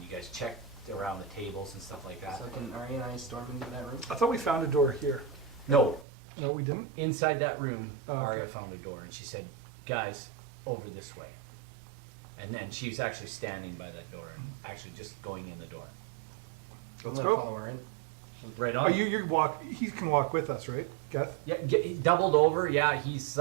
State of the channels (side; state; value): left; drops out; at 6.1 s